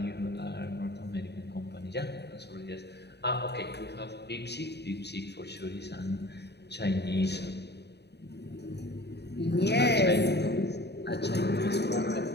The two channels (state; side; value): late; right; 0.49 ms